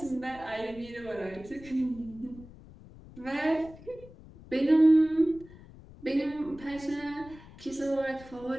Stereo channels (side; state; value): left; noise; rumble, 19 dB below the sound